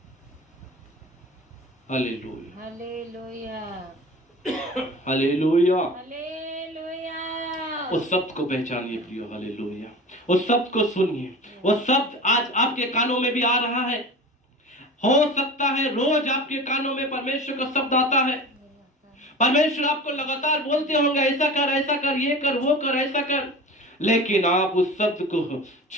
Hallelujah, hallelujah, hallelujah. हालेलुया। उस शब्द को पहचानिए प्रियो, हालेलुया। उस शब्द को सुनिए। वो शब्द आज आपके कानों में भी आ रहा है। हो सकता है रोज आपके कानों में परमेश्वर का शब्द आता है। परमेश्वर आपको लगातार बोलते होंगे ऐसा कर, ये कर, वो कर, ऐसा कर, लेकिन आप उस शब्द को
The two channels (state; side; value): normal; both; correlation 0.35